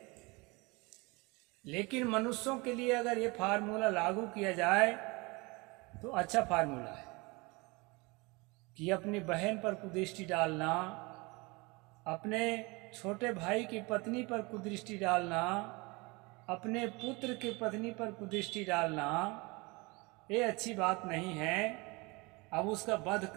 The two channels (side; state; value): left; quieter; 25.9 dB